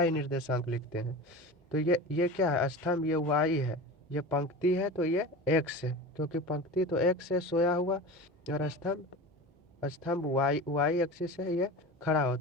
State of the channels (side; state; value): both; normal; correlation 0.31